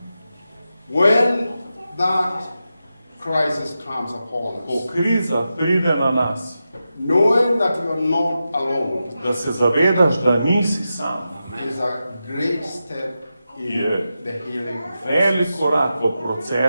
When that crisis comes upon Ko us, kriza pride na nas, knowing that you are not alone da se zavedaš, da nisi sam, is a great step in Yeah. the healing velik process. korak v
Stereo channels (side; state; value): both; inverted; correlation -0.90